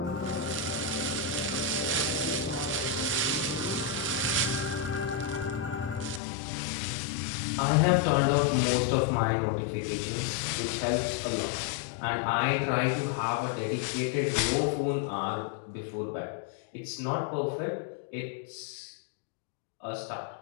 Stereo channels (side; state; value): right; drops out; at 6.2 s